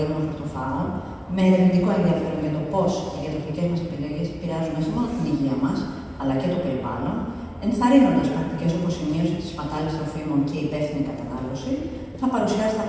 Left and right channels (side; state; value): both; identical; correlation 1.00